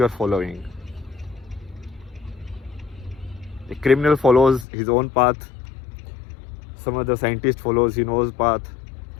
are following. A criminal follows his own path. Some other scientist follows his own path.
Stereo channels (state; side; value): drops out; right; at 4.7 s